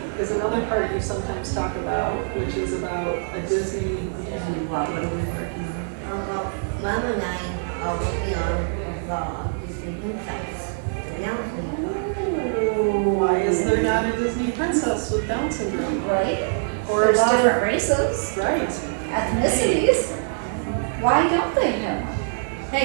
is another part you sometimes talk about, which is about a Disney. What are we working on? Well, Mom and I are working on Disney Princess. Down syndrome. Oh, why is there not a Disney princess with Down syndrome? Right? Or There's a lot of- different races, Right. ethnicities. Why don't they have one?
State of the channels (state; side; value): silent; left; 59 dB below the other